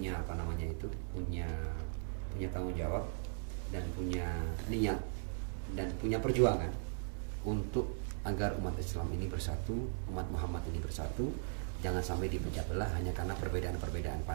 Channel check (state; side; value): silent; left; digital silence